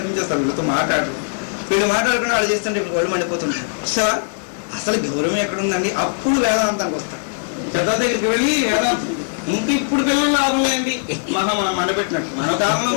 వీళ్ళతో మాట్లాడు. వీళ్ళు మాట్లాడుకుని వాళ్ళు చేస్తుంటే ఇప్పుడు వాళ్ళు మండిపోతుంటారు. సార్ అసలు గౌరవం ఎక్కడుందండి? అప్పుడు వేదాంతానికి వస్తారు. పెద్ద దగ్గరికి వెళ్ళి వేదాంతం ఇంక ఇప్పుడు పిల్లలు లాభం లేండి మనం మండపెట్టినట్టు. మన కాలంలో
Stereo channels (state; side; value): silent; right; digital silence